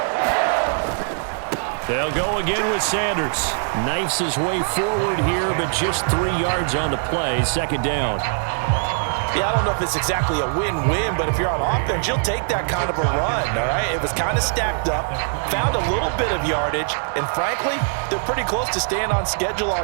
They'll go again with Sanders. Knifes his way forward here, but just 3 yards on the play. Second down. Yeah, I don't know if it's exactly a win-win, but if you're on offense, you'll take that kind of a run, all right? It was kind of stacked up, found a little bit of yardage, and frankly, they're pretty close to staying on schedule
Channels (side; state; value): left; silent; digital silence